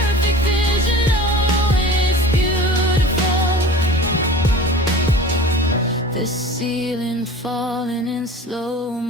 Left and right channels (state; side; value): normal; both; correlation 0.40